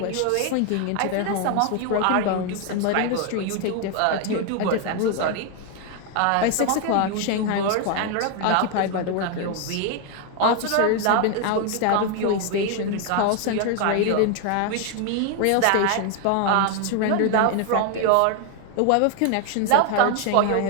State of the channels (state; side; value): different; both; correlation 0.01